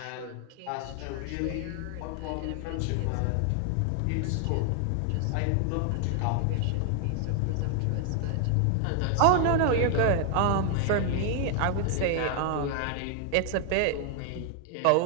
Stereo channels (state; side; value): different; both; correlation 0.00